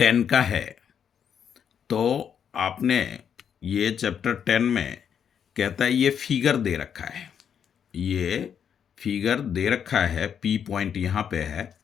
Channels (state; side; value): quieter; right; 8.0 dB